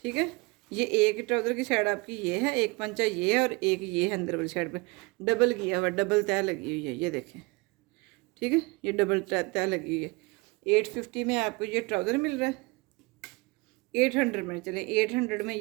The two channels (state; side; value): quieter; left; 26.0 dB